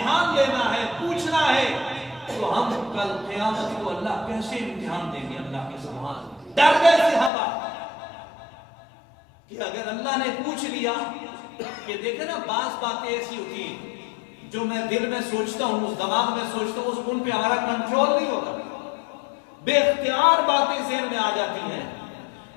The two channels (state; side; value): drops out; right; at 7.3 s